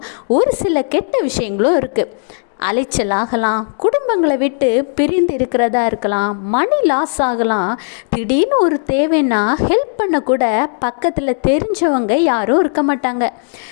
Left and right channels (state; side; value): silent; right; 69 dB below the other